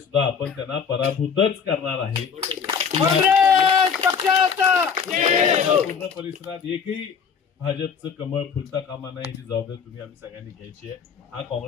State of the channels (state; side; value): quieter; right; 6.5 dB